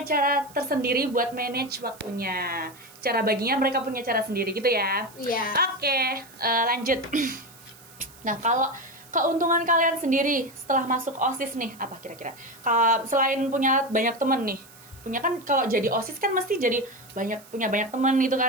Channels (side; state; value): right; noise; hiss, 22 dB below the sound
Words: cara tersendiri buat manage waktunya. Cara baginya mereka punya cara sendiri gitu ya. Iya. Oke, lanjut. Nah, kalau keuntungan kalian sendiri setelah masuk OSIS nih, apa kira-kira? Selain punya banyak temen nih, punya kan kalau jadi OSIS kan mesti jadi punya banyak temen gitu